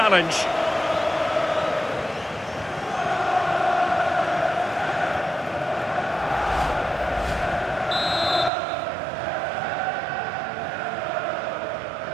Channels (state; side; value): drops out; left; at 8.5 s